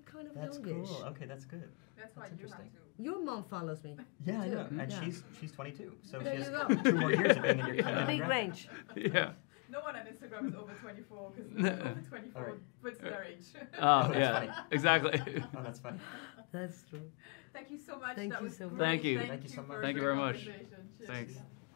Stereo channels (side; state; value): right; quieter; 30.5 dB